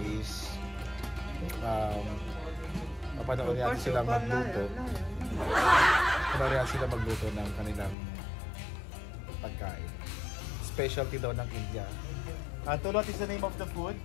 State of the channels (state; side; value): drops out; right; at 8.0 s